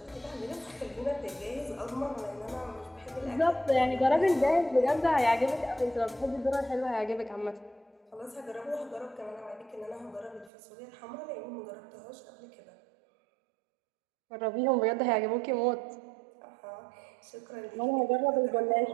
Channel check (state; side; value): drops out; left; at 10.5 s